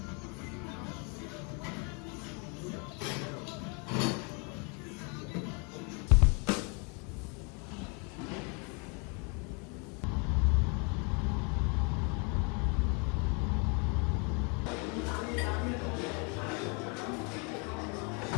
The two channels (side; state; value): right; quieter; 34.2 dB